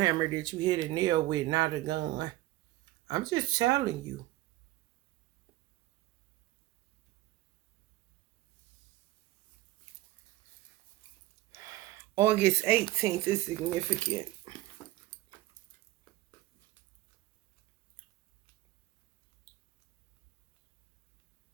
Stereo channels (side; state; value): left; quieter; 16.9 dB